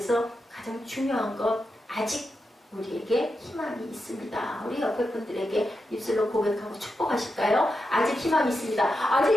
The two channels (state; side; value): normal; both; correlation 0.88